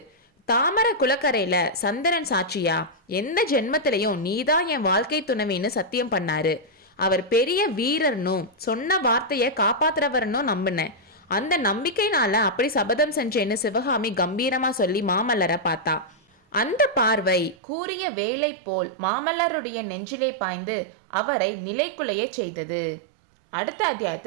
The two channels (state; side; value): drops out; left; at 17.6 s